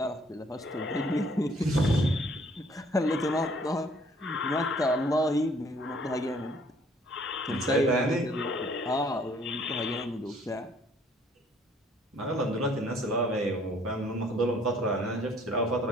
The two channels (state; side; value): normal; both; correlation 0.60